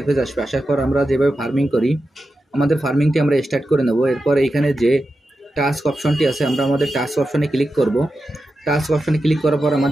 আসবে। আসার পর আমরা যেভাবে ফার্মিং করি, আমাদের ফার্মিংটি আমরা স্টার্ট করে নেব। এরপর এইখানে যে টাস্ক অপশনটি আছে, আমরা আমাদের টাস্ক অপশনে ক্লিক করব। টাস্ক অপশনে ক্লিক করার পর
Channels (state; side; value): normal; both; correlation 0.91